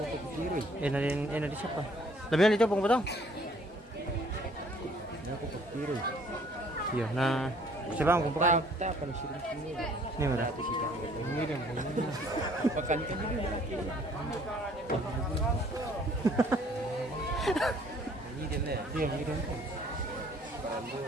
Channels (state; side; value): normal; both; correlation 0.59